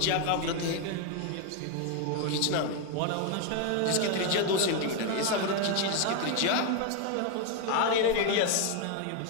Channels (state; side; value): different; both; correlation 0.01